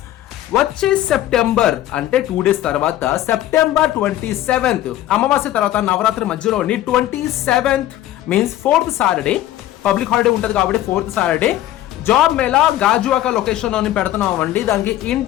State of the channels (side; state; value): right; quieter; 13.7 dB